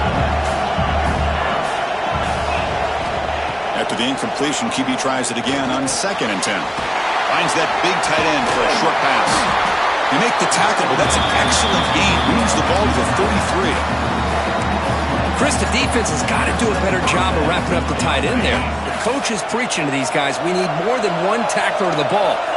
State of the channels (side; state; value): both; identical; correlation 1.00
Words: After the incompletion, QB tries it again on second and 10. Finds that big tight end for a short pass. They make the tackle, but that's an excellent gain. Moves the ball to the 33. Chris, the defense has got to do a better job of wrapping up the tight end there. The coach is preaching to these guys, we need more than one tackler to the ball.